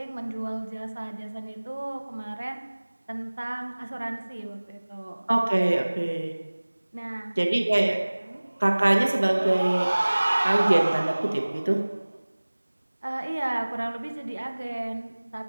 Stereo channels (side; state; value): both; inverted; correlation -1.00